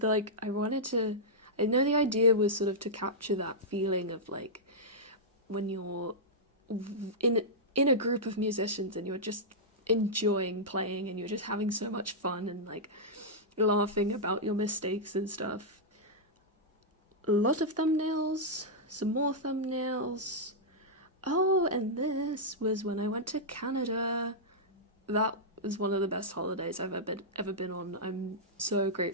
like I know the idea was sort of to capture that feeling of like when you're in a group of musicians and you're just enjoying playing and you're just having so much fun and like laughing about your mistakes and stuff. A lot of thumbnails, some more thumbnails. Oh, and this was when I went to Canada. That was one of the best holidays I've ever been on. I'm so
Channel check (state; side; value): normal; both; correlation -0.10